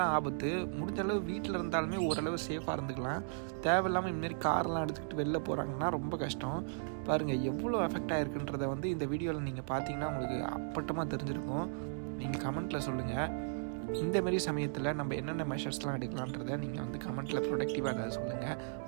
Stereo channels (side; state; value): left; silent; digital silence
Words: ஆபத்து. முடிஞ்ச அளவு வீட்டில் இருந்தாலுமே ஓரளவு சேஃபாக இருந்துக்கலாம். தேவையில்லாமல் இந்தமாரி கார்லாம் எடுத்துக்கிட்டு வெளில போகிறாங்கன்னா ரொம்ப கஷ்டம். பாருங்கள் எவ்வளோ எஃபெக்ட் ஆகிருக்குன்றதை வந்து இந்த வீடியோவில் நீங்கள் பார்த்தீங்கன்னா உங்களுக்கு அப்பட்டமாக தெரிஞ்சிருக்கும். நீங்கள் கமெண்ட்டில் சொல்லுங்கள். இந்தமாரி சமயத்தில் நம்ம என்னென்ன மெஷர்ஸ்லாம் எடுக்கலான்றதை நீங்கள் வந்து கமெண்ட்டில் ப்ரொடக்டிவாக அதை சொல்லுங்கள்.